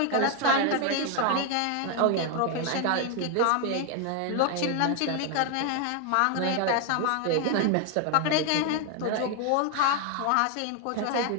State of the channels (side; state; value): both; different; correlation 0.01